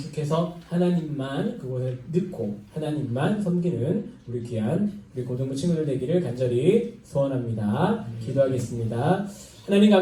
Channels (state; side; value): identical; both; correlation 1.00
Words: 하나님만 그곳에 넣고 하나님만 섬기는 우리 귀한 우리 고등부 친구들 되기를 간절히 소원합니다. 기도하겠습니다. 하나님